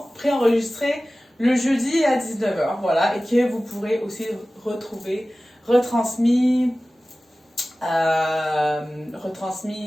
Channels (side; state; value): both; normal; correlation 0.97